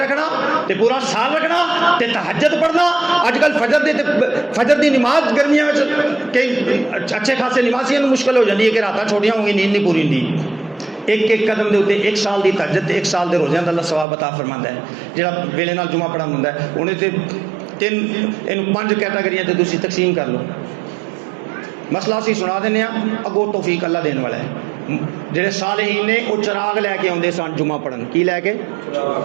तो पूरा साल रखना, तो तहज्जुद पढ़ना। अजकल फजर की नमाज गर्मियों में कई अच्छे खासे नमाजियों को मुश्किल हो जाती है कि रात छोटियां होंगी, नींद नहीं पूरी होंगी। एक एक कदम के उत्ते 1 साल की तहज्जुद, 1 साल के रोज़ियां का अल्लाह सवाब अता फरमाता है। जो वेले नाल जुमा पढ़न होंदा है उन्हें तो 5 कैटागरियां तो तुसीं तकसीम कर लो। मसला असीं सुना देने, अगों तौफीक अल्लाह देने वाला है। जेडे सालेहीन ने वो चिराग लैके आउंदे सन जुमा पढ़न, की लैके?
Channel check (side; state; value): left; drops out; at 14.1 s